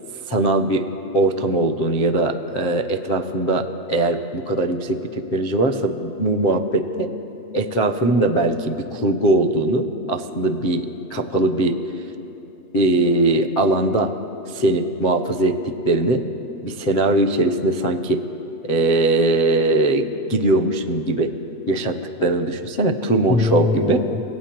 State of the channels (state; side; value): late; right; 7.7 ms